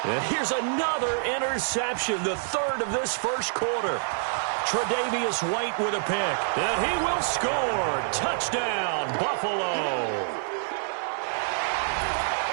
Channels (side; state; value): left; silent; 56 dB below the other